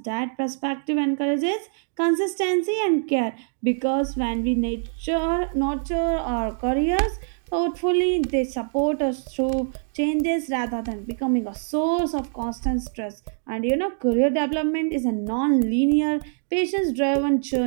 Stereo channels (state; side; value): silent; left; digital silence